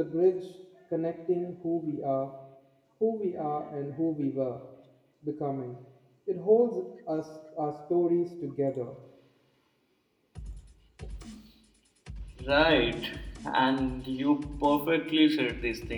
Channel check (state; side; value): identical; both; correlation 1.00